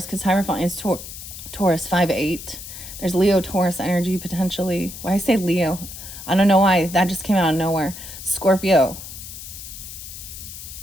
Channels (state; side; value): noise; left; hiss, 12 dB below the sound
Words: because Hierophant is Taurus 5-8. There's Leo Taurus energy potentially. Why I say Leo? I don't know why. That just came out of nowhere. Scorpio.